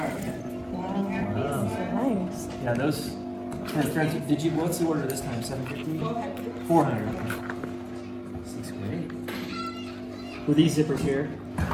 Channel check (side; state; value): both; identical; correlation 1.00